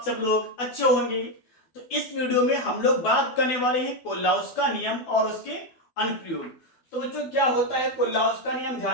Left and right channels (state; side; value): late; right; 12 ms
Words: सब लोग अच्छे होंगे। तो इस वीडियो में हम लोग बात करने वाले हैं कोल्लाउस का नियम और उसके अनुप्रयोग। तो बच्चों, क्या होता है कोल्लाउस का नियम,